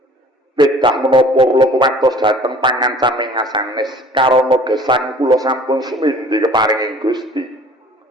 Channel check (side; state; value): both; normal; correlation 0.49